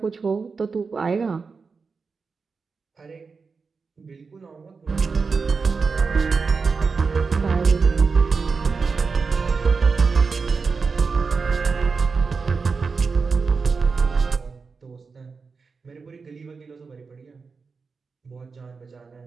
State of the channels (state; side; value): quieter; left; 4.8 dB